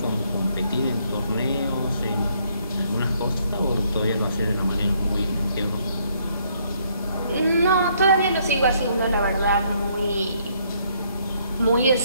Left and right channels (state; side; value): inverted; both; correlation -0.69